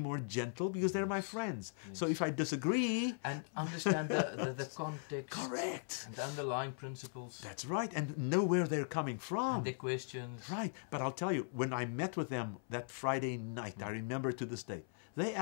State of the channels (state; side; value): silent; right; 52 dB below the other